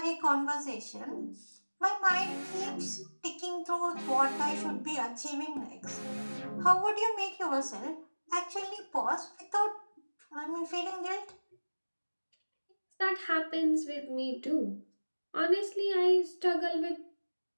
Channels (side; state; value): both; inverted; correlation -1.00